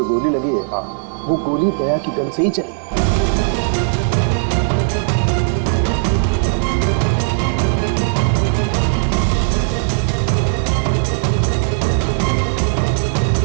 गोली लगी है, हाँ, वो गोली दया की गन से ही चली।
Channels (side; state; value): left; silent; 56 dB below the other